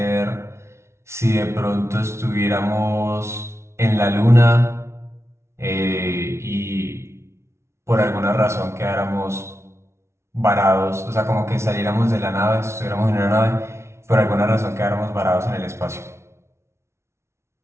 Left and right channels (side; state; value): left; late; 0.13 ms